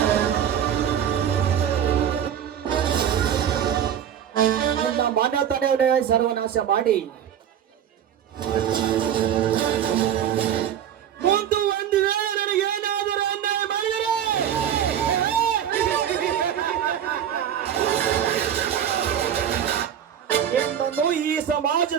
ನಿನ್ನ ಮನೆತನವನ್ನೇ ಸರ್ವನಾಶ ಮಾಡಿ ಮುಂದೆ ಒಂದು ವೇಳೆ ನನಗೆ ಏನಾದರೂ ಅನ್ಯಾಯ ಮಾಡಿದರೆ ನಿನ್ನನ್ನು ಈ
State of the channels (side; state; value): left; quieter; 9.6 dB